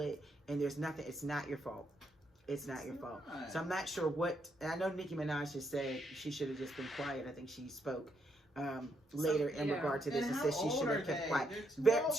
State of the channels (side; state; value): both; normal; correlation 0.77